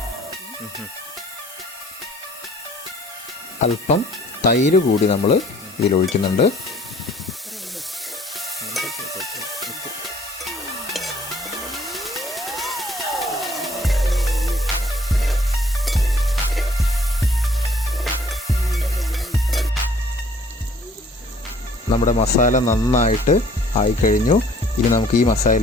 അല്പം തൈര് കൂടി നമ്മൾ ഇതിലൊഴിക്കുന്നുണ്ട്. നമ്മുടെ മസാല നന്നായിട്ട് ആയിക്കഴിഞ്ഞു. ഇനി നമുക്ക് ഈ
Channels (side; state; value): both; normal; correlation 0.58